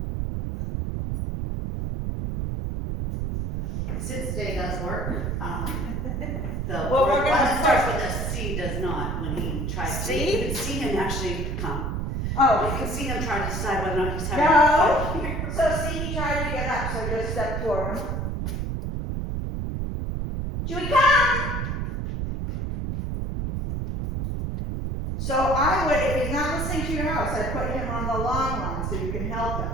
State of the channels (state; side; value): noise; right; rumble, 2 dB below the sound